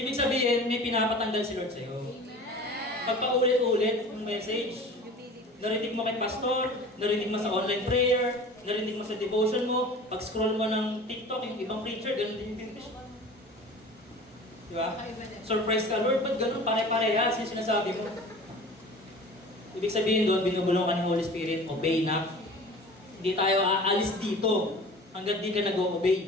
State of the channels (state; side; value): normal; both; correlation 0.41